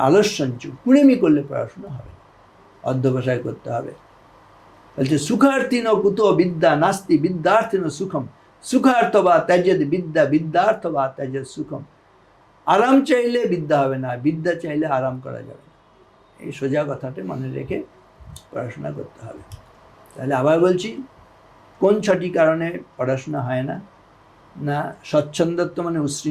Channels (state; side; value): identical; both; correlation 1.00